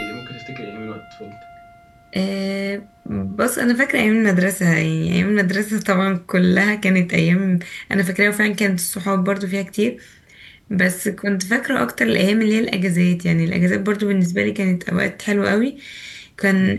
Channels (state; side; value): identical; both; correlation 1.00